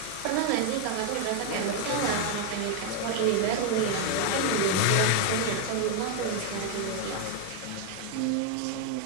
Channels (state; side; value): different; both; correlation 0.00